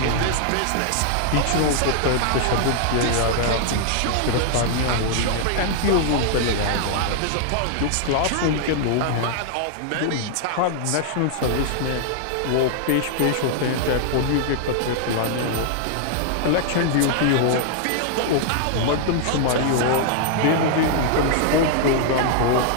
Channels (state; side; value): different; both; correlation -0.01